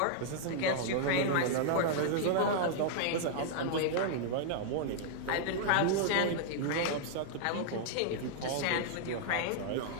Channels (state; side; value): different; both; correlation -0.01